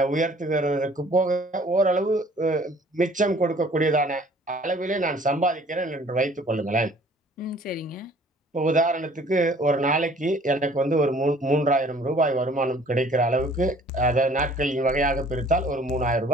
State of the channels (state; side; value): normal; both; correlation 0.54